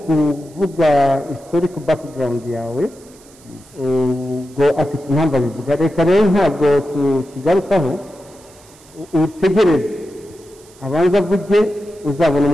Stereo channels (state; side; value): noise; right; hiss, 26 dB below the sound